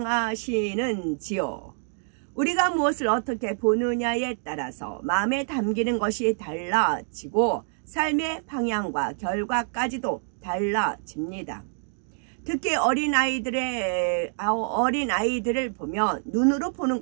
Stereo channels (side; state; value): left; silent; digital silence